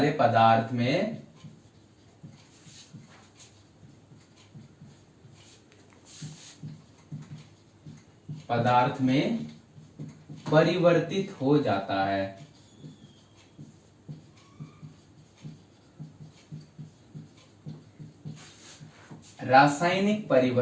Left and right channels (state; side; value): identical; both; correlation 1.00